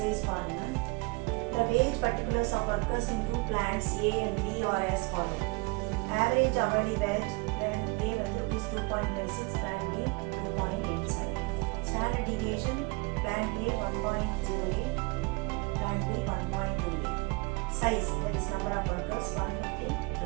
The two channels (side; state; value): left; quieter; 27.8 dB